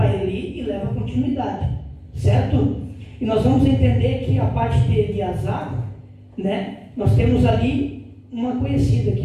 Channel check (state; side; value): identical; both; correlation 1.00